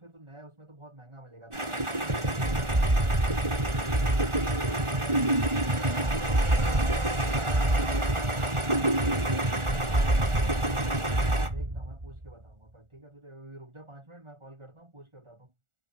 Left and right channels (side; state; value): left; late; 1.4 ms